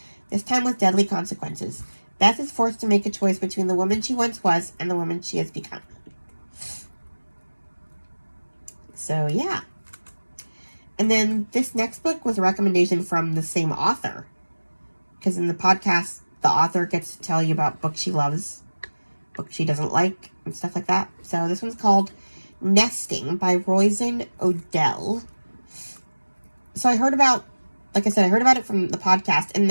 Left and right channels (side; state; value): both; inverted; correlation -1.00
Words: this time with deadly consequences. Beth is forced to make a choice between the woman she once was and the woman she has become. So, yeah. And then this next book was a recommendation from the same author. Because in the podcast, the author gets to tell you about books she loves, books she doesn't like, and stuff like that. So this one's called Nesting by Roisin Odell. So I heard about it from the podcast, and